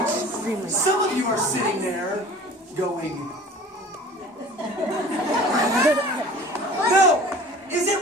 some of you are sitting there going, no, is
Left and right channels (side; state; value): both; normal; correlation 0.44